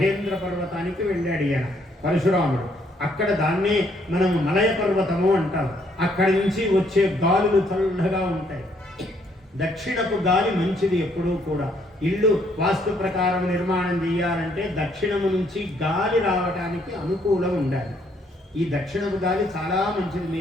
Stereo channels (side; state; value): both; normal; correlation 0.69